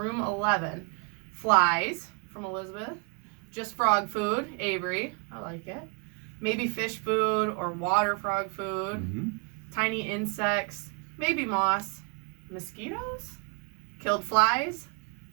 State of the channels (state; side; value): quieter; left; 32.2 dB